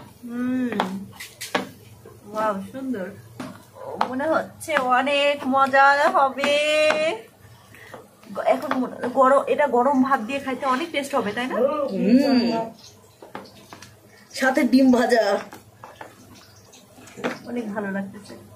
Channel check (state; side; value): identical; both; correlation 1.00